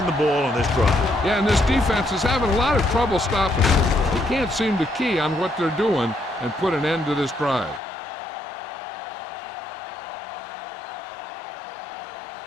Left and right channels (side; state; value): right; drops out; at 7.8 s